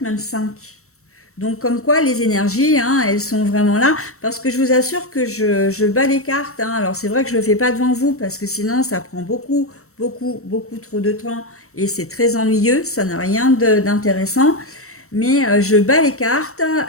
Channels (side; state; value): right; late; 0.64 ms